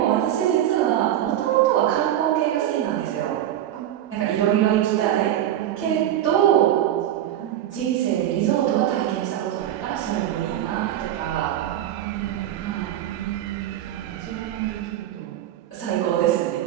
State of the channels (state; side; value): quieter; left; 11.9 dB